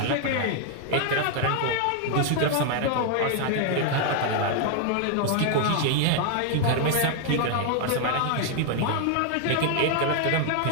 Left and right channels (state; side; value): different; both; correlation 0.00